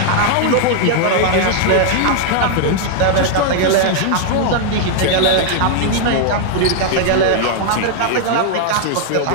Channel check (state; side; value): different; both; correlation 0.00